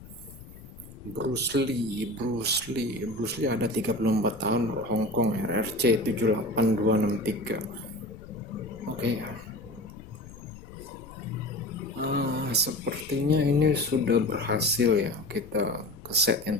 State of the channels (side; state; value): left; noise; rumble, 17 dB below the sound